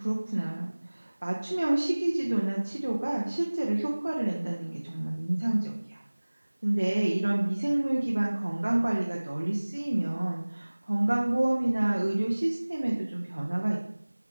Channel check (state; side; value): inverted; both; correlation -1.00